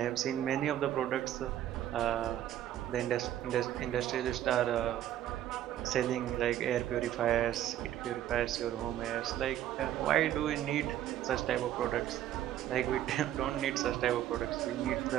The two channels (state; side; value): quieter; left; 12.0 dB